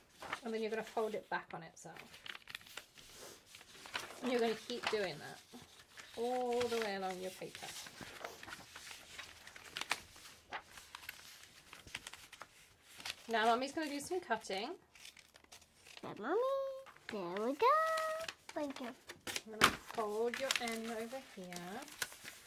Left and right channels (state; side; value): identical; both; correlation 1.00